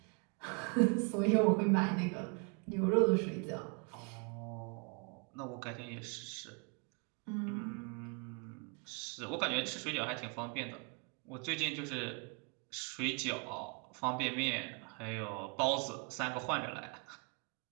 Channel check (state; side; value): quieter; left; 34.3 dB